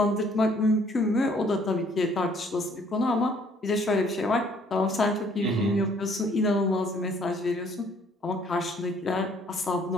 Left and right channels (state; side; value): normal; both; correlation 0.61